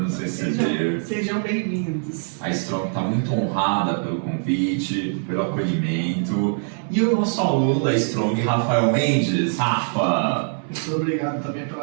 nos receber. Sejam bem-vindos. A Strong está muito honrada pelo convite, pelo acolhimento. E o nosso aluno da Strong, Rafael Mendes. Rafa! Muito obrigado também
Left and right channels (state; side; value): silent; left; 64 dB below the other